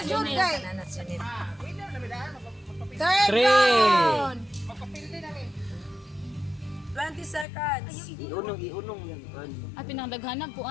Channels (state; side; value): drops out; right; at 7.5 s